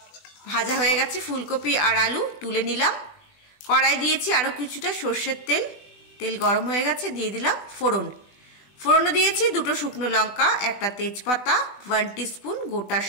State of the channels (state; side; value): late; right; 20 ms